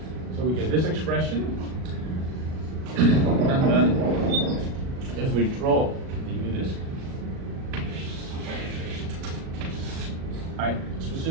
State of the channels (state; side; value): late; left; 37 ms